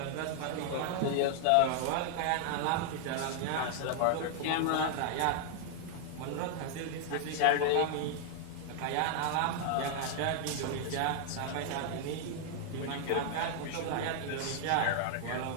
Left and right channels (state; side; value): different; both; correlation 0.00